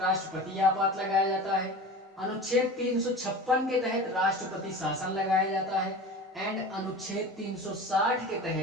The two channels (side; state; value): both; normal; correlation 0.34